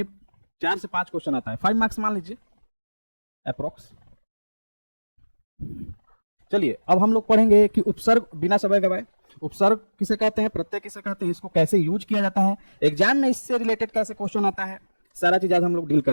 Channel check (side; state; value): both; inverted; correlation -1.00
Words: 4 से 5 क्वेश्चन आता है, 5 मार्क्स मान लीजिए अप्रोक्स। चलिए अब हम लोग पढ़ेंगे कि उपसर्ग, बिना समय गवाए, उपसर्ग किसे कहते हैं, प्रत्यय किसे कहते हैं, इसको कैसे यूज किया जाता है, एग्जाम में इससे रिलेटेड कैसे क्वेश्चन आता है, सारा चीज आज हम लोग डील